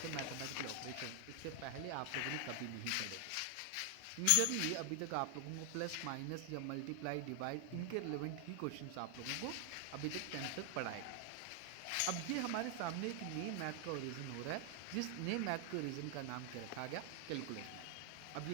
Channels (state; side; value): different; both; correlation 0.00